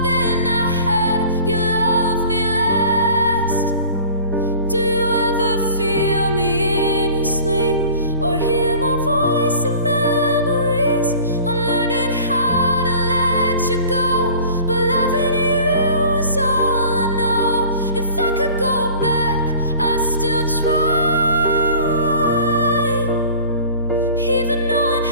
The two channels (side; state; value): both; inverted; correlation -0.44